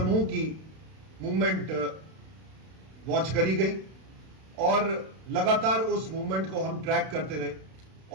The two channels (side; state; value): left; late; 32 ms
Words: की मूवमेंट वॉच करी गई, और लगातार उस मूवमेंट को हम ट्रैक करते रहे,